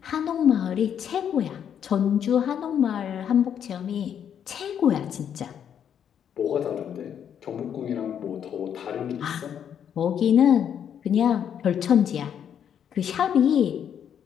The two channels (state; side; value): quieter; right; 8.7 dB